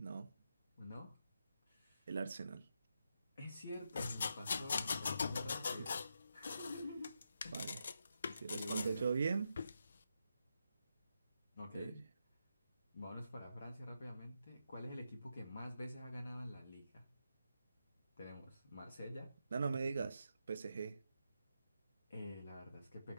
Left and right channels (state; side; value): inverted; both; correlation -0.84